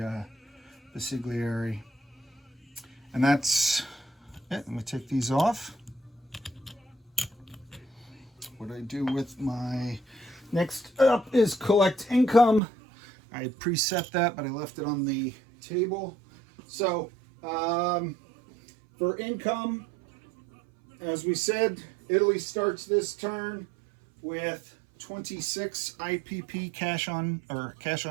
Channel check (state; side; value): drops out; left; at 12.6 s